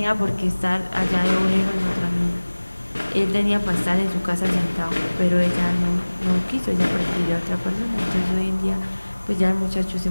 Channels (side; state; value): both; inverted; correlation -1.00